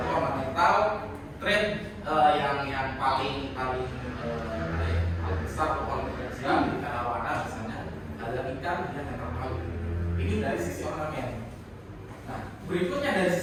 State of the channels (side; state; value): both; identical; correlation 1.00